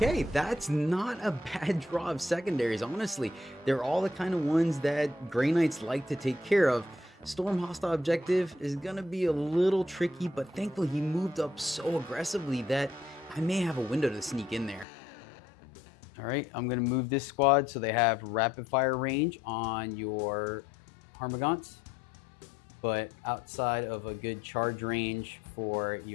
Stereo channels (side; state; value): right; drops out; at 14.9 s